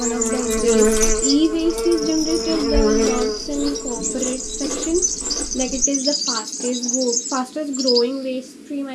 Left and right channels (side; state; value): both; identical; correlation 1.00